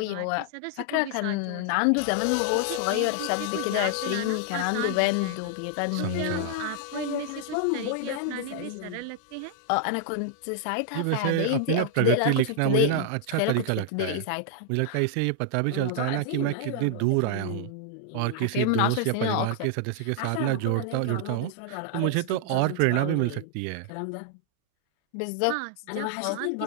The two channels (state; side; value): different; both; correlation 0.00